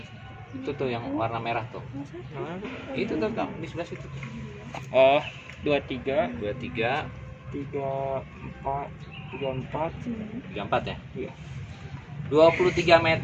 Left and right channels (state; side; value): identical; both; correlation 1.00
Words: Itu tuh yang warna merah tuh. Itu tuh, Kang, di sebelah situ. Oh, 23, 23, 34, 34 ya? Iya. 23